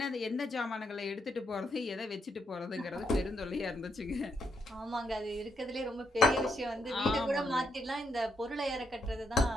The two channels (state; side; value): normal; both; correlation 0.78